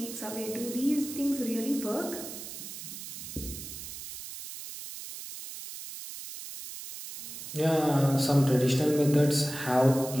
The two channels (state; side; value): noise; right; hiss, 10 dB below the sound